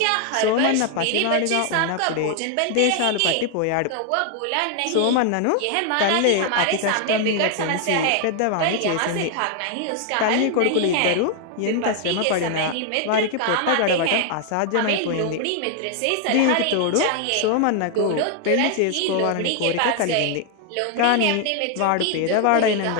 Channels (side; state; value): both; different; correlation 0.00